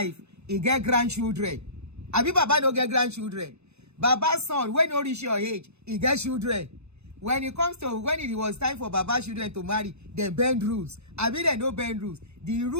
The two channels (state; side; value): late; left; 0.81 ms